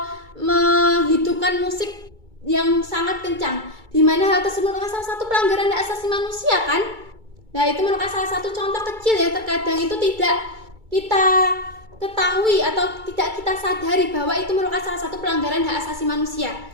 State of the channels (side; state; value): left; late; 2.3 ms